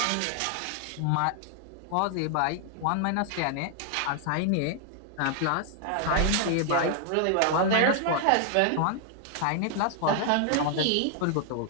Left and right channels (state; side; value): different; both; correlation 0.00